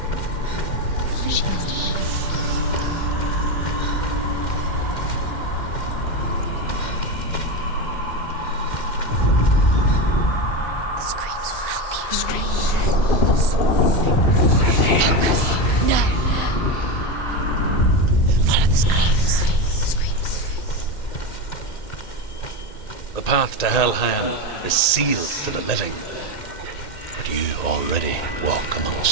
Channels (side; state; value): right; late; 1.8 ms